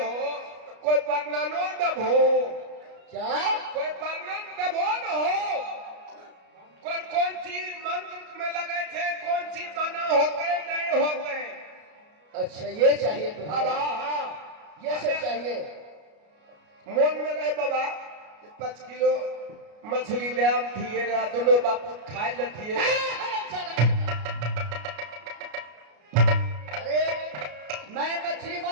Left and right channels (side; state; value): left; late; 33 ms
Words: कोई वर्णनो दबो, क्या कोई वर्णन दबो न हो, कौन कौन चीज मंत्र में लगे थे, कौन सी बना होते नहीं होते। अच्छा ये चाहिए तुम्हारा? हाँ ये सब चाहिए। मन में रहे बाबा 5 किलो मछली ले आम थिए रे दोनों बापू खाए ले थिए।